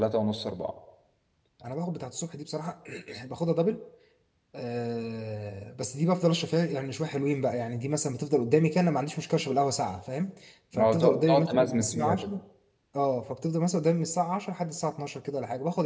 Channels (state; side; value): identical; both; correlation 1.00